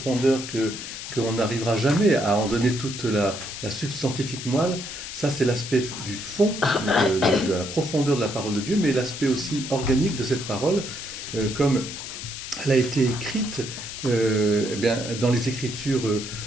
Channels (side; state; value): left; noise; hiss, 9 dB below the sound